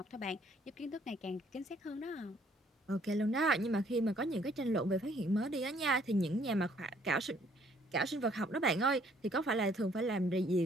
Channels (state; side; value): normal; both; correlation 0.63